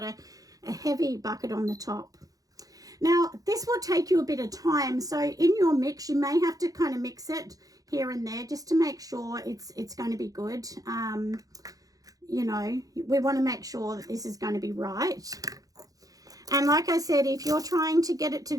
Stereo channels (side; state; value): left; late; 0.17 ms